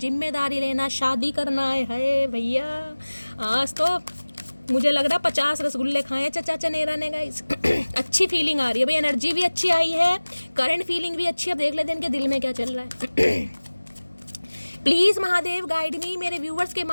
लेना, शादी करना है भैया। आज तो मुझे लग रहा 50 रसगुल्ले खाए चचा चनेरा ने गाइस। अच्छी फीलिंग आ रही है भाई, एनर्जी भी अच्छी आई है, करंट फीलिंग भी अच्छी है। अब देख लेते हैं इनके दिल में क्या चल रहा है। प्लीज़ महादेव गाइड मी, मेरे व्यूवर्स के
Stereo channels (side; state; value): both; inverted; correlation -1.00